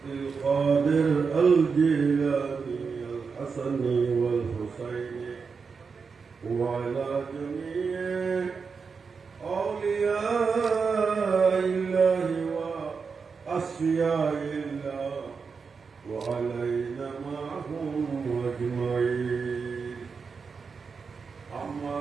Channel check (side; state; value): left; quieter; 5.3 dB